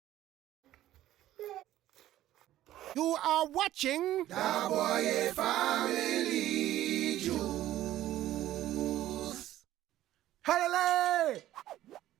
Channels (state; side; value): quieter; left; 13.8 dB